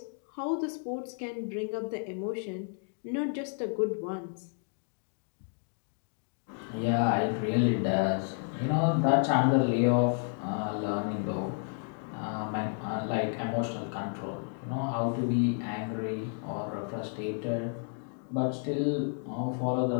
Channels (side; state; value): right; silent; 57 dB below the other